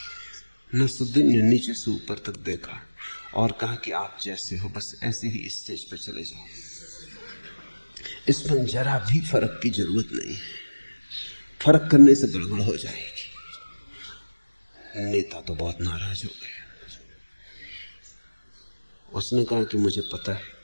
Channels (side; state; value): both; inverted; correlation -1.00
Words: नसरुद्दीन ने नीचे से ऊपर तक देखा और कहा कि आप जैसे हो बस ऐसे ही स्टेज पर चले जाओ, इसमें जरा भी फर्क की जरूरत नहीं है, फर्क करने से गड़बड़ हो जाएगी। नेता तो बहुत नाराज हो गया। उसने कहा कि मुझे पता है,